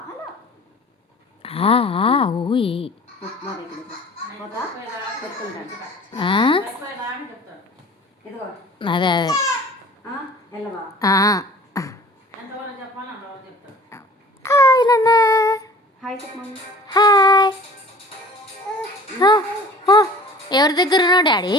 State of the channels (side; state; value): both; normal; correlation 0.46